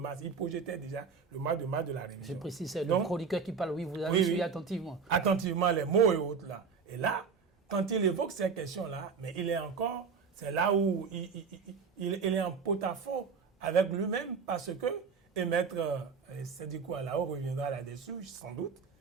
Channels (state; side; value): quieter; left; 5.6 dB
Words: il projetait déjà le mois de mars de la révision. Je précise, c'est le chroniqueur qui parle, oui, vous avez suivi attentivement. Attentivement les mots et autres là. Et là, quand il évoque ces questions-là, mais il est encore, c'est là où il est en porte-à-faux avec lui-même parce que, et maître Sédhikou Alao reviendra là-dessus, sans doute,